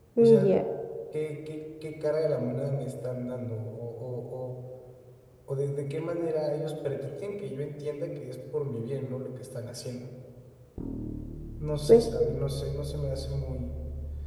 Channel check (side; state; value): both; identical; correlation 1.00